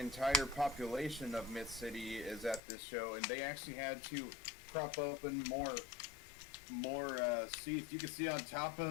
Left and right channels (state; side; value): drops out; right; at 2.6 s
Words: population of Mid City is at this show, and they actually had to prop open more seats. You can see on top